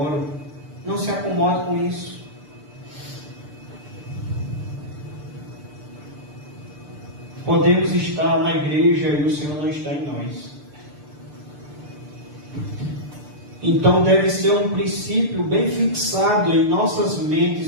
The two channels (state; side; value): late; left; 6.8 ms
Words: Não se acomode com isso. Podemos estar na igreja e o Senhor não está em nós. Então deve ser um princípio bem fixado em nossas